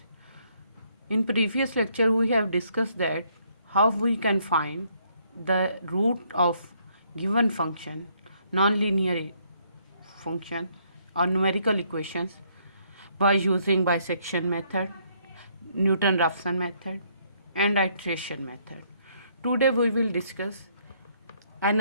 In previous lecture we have discussed that how we can find the root of given function, nonlinear function or numerical equations by using bisection method, Newton-Raphson method and iteration method. Today we will discuss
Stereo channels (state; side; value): inverted; both; correlation -0.69